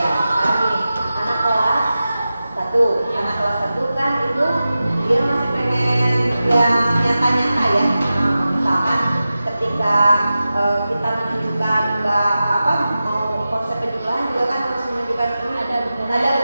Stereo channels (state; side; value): inverted; both; correlation -0.93